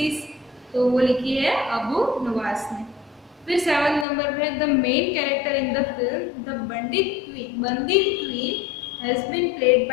तो वो लिखी है अबू नवास ने। फिर 7 नंबर पे the main character in the film the bandit queen has been played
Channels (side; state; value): right; drops out; at 4.0 s